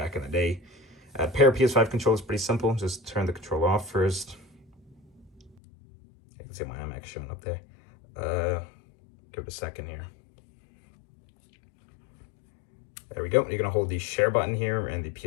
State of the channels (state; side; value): drops out; right; at 5.6 s